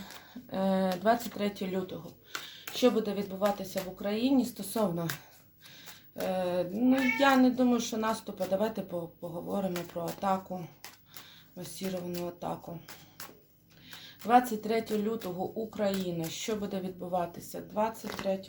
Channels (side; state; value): both; identical; correlation 1.00